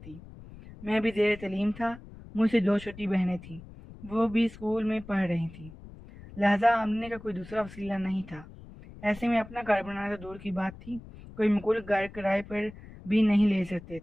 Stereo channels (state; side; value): noise; left; rumble, 17 dB below the sound